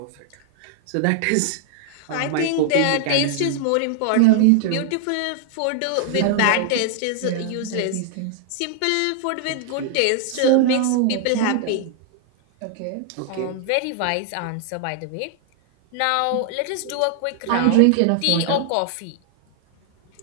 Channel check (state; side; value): different; both; correlation 0.00